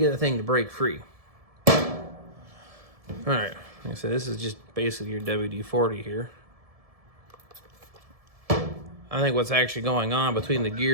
the thing to break free. All right. Like I said, this is just basically your WD-40 here. I think what's actually going on between the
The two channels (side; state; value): left; late; 1.7 ms